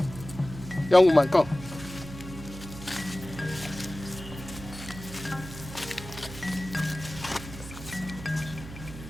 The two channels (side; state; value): right; noise; hum, 12 dB below the sound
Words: Young woman, come.